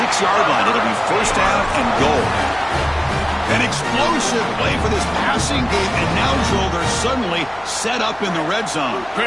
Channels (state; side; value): noise; left; hum, 26 dB below the sound